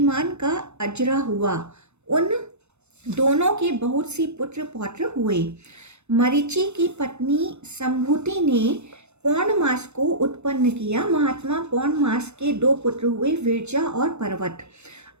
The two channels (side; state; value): left; late; 0.81 ms